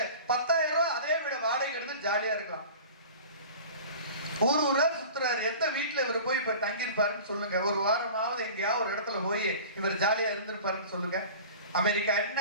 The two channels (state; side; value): inverted; both; correlation -0.39